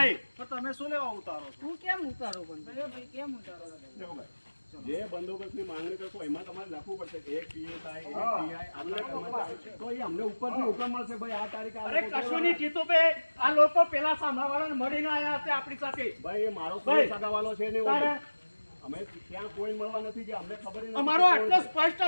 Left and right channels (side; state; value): both; inverted; correlation -1.00